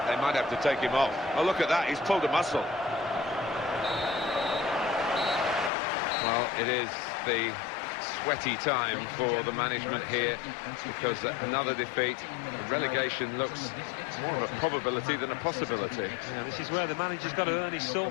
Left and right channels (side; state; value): right; drops out; at 5.7 s